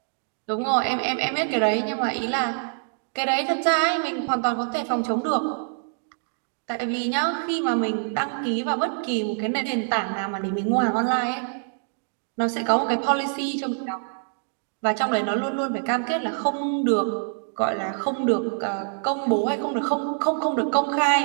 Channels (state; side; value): silent; left; digital silence